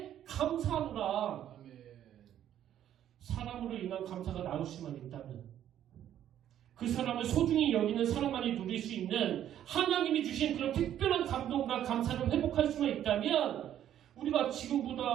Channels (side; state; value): left; quieter; 10.9 dB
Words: 감사하노라. 사람으로 인한 감사가 나올 수만 있다면, 그 사람을 소중히 여기는 사람만이 누릴 수 있는 하나님이 주신 그런 특별한 감동과 감사를 회복할 수만 있다면 우리가 지금보다